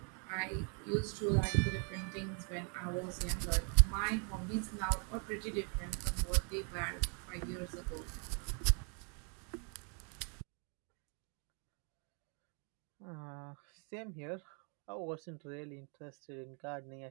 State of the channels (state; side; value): quieter; left; 38.6 dB